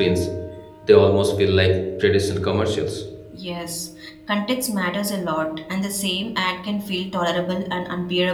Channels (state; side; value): identical; both; correlation 1.00